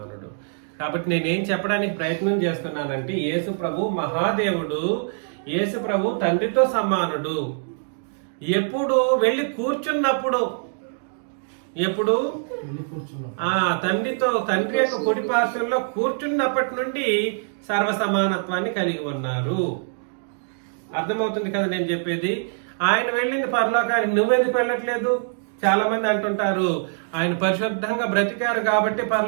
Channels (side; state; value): left; silent; digital silence